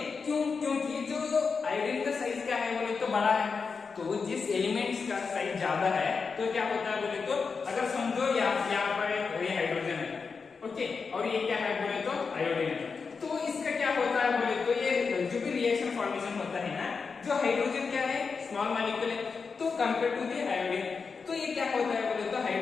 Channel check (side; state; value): right; quieter; 5.1 dB